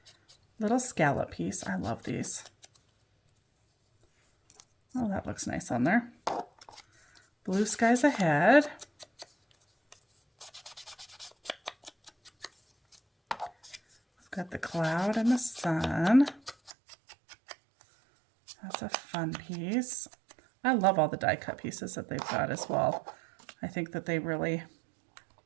little scallop piece. I love these. Oh, that looks nice on there. Blue skies ahead. We've got the cloud and the sun. That's a fun piece. I love all the die cut pieces that they've got as well. I think that they really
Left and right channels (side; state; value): left; drops out; at 16.7 s